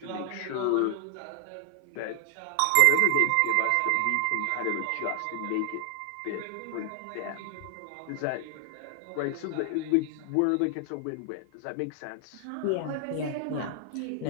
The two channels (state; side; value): different; both; correlation 0.00